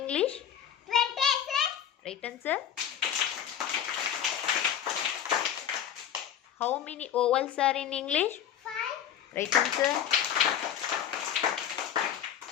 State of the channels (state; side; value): quieter; right; 9.5 dB